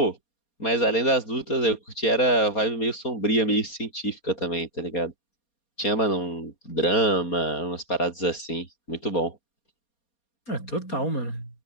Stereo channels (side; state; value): right; late; 4.3 ms